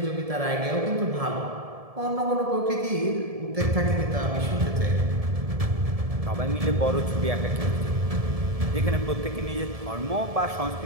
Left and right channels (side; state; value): left; late; 1.7 ms